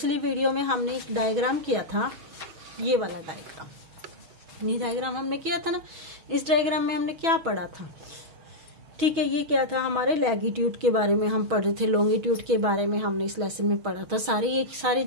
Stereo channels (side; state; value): left; late; 6.2 ms